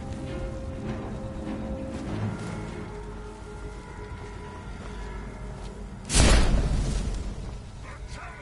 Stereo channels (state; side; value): identical; both; correlation 1.00